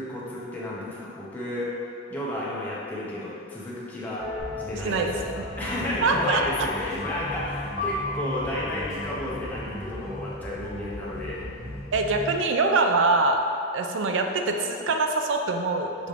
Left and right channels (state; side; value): normal; both; correlation 0.00